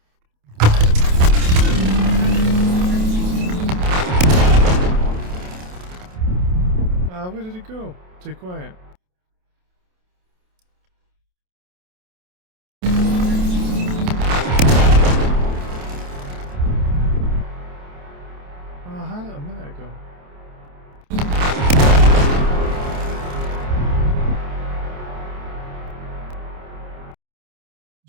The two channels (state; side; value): late; left; 28 ms